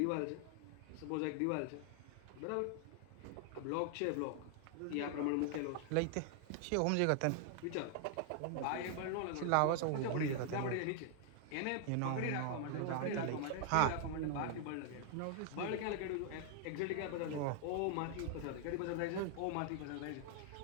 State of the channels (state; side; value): different; both; correlation 0.00